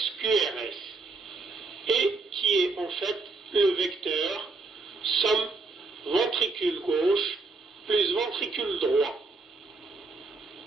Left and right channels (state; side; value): quieter; left; 3.7 dB